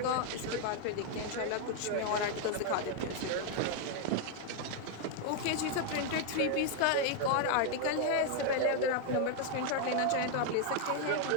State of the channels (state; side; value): different; both; correlation 0.00